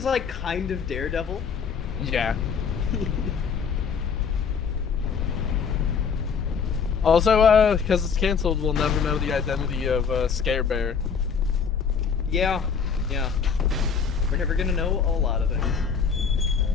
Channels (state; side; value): quieter; right; 6.3 dB